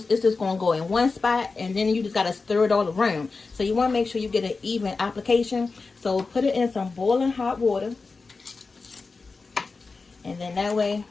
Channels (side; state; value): right; quieter; 4.2 dB